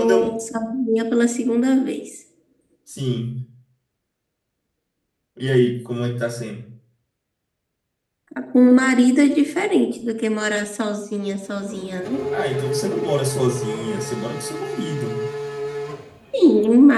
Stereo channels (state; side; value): identical; both; correlation 1.00